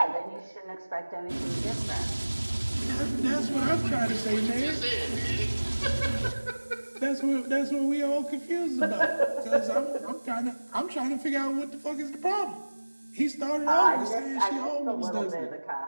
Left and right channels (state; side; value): inverted; both; correlation -1.00